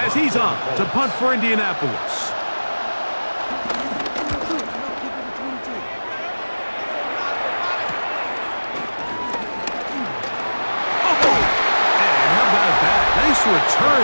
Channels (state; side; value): inverted; both; correlation -1.00